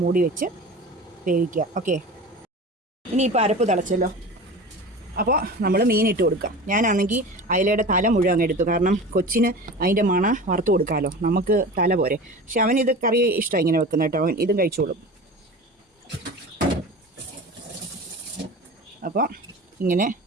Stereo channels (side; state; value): both; normal; correlation 0.34